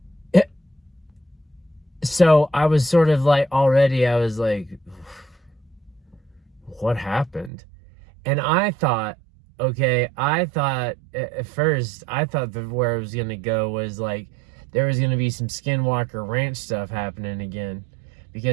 so I was sort of like, already I was like, what happened? And I thought at first, I thought that where it was going to go was like, there was going to be some Skinwalker Ranch stuff happening again.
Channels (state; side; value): drops out; left; at 7.5 s